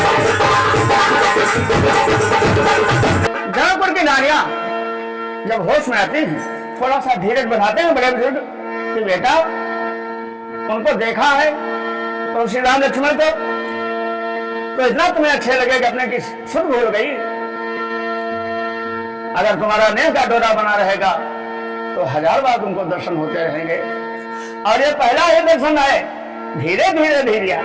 जौनपुर की नारियां जब होश में आती हैं थोड़ा सा धीरज बढ़ाते हैं बड़े बुजुर्ग कि बेटा उनको देखा है तो श्री राम लक्ष्मण को तो इतना तुम्हें अच्छे लगे कि अपने की सुध भूल गई, अगर तुम्हारा नेह का डोरा बना रहेगा तो 1000 बार तुमको दर्शन होते रहेंगे। और ये पहला ही दर्शन है, धीरे धीरे धीरे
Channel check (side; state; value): both; identical; correlation 1.00